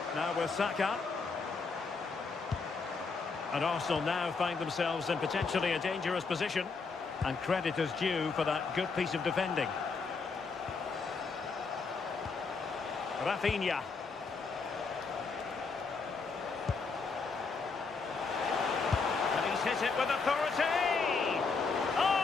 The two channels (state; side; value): quieter; right; 4.6 dB